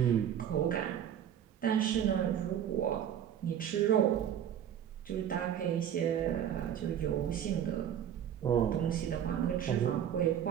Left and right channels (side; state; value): left; quieter; 9.7 dB